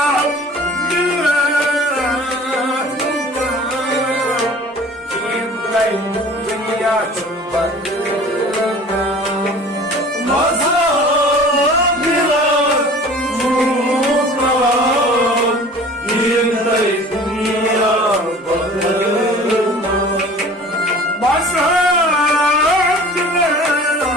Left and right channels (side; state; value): both; normal; correlation 0.45